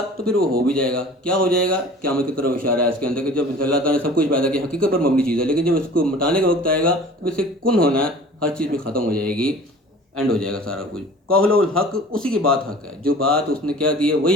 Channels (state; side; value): normal; both; correlation 0.44